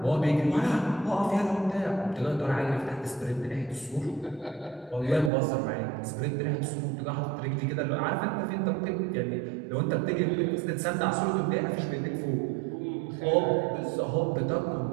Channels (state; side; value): drops out; left; at 5.3 s